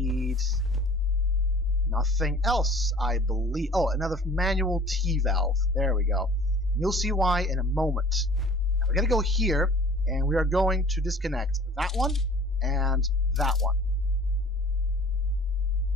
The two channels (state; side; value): normal; both; correlation 0.48